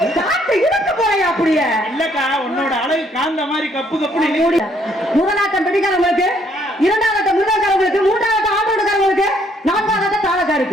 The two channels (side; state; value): both; normal; correlation 0.67